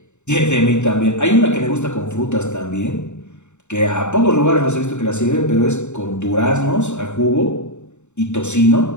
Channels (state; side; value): late; right; 0.83 ms